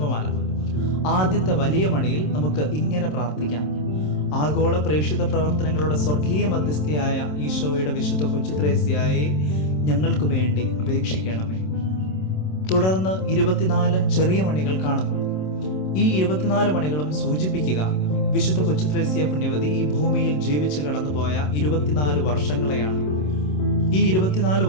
ആദ്യത്തെ വലിയ മണിയിൽ നമുക്ക് ഇങ്ങനെ പ്രാർത്ഥിക്കാം: ആഗോള പ്രേക്ഷിത പ്രവർത്തനങ്ങളുടെ സ്വർഗീയ മധ്യസ്ഥയായ ഈശോയുടെ വിശുദ്ധ കൊച്ചുത്രേസ്യയെ ഞങ്ങൾക്ക് വേണ്ടി അപേക്ഷിക്കണമേ. തുടർന്ന് 24 ചെറിയ മണികൾ കാണുന്നു. ഈ 24 മണികളും സൂചിപ്പിക്കുക വിശുദ്ധ കൊച്ചുത്രേസ്യ പുണ്യവതി ഈ ഭൂമിയിൽ ജീവിച്ചു കടന്നുപോയ 24 വർഷങ്ങളെയാണ്. ഈ 24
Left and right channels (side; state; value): right; late; 27 ms